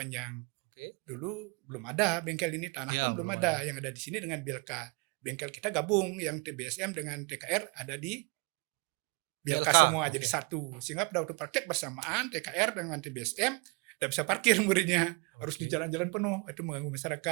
Dulu belum ada bengkel ini, tanah pun belum ada. Yang ada di sini dengan Bilka. Bengkel kita gabung, yang TBSM dengan TKR ada di Bilka semua jadi satu. Sehingga pada waktu praktek bersamaan TKR dengan TBSM tidak bisa parkir muridnya, harus di jalan-jalan penuh, itu mengganggu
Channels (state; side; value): quieter; left; 30.3 dB